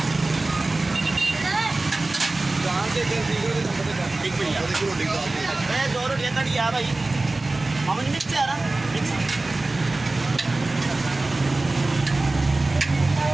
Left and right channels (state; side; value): quieter; left; 3.1 dB